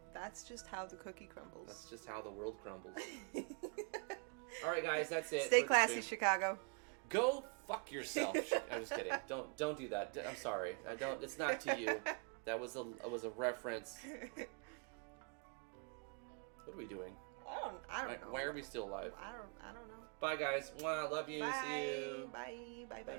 That's just how the cookie crumbles. that's just how the world crumbles. All right, guys, that's it. Stay for the classy, stream. Chicago. Go fuck yourself. I'm just kidding. Don't do that. I'm sorry. I don't. It's not to you. That was a reference. What are we doing? I don't know. Why are we still alive? I don't know. Bye, guys. Mwah, love you. Bye. See you. Bye. Bye. Bye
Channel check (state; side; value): quieter; left; 34.9 dB